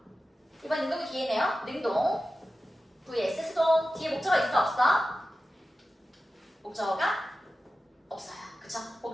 이번 능동이 뒤에네요. 능동 vs 수동. 뒤에 목적어 있어 없어? 목적어가 없어요. 그쵸?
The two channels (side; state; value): both; normal; correlation 0.93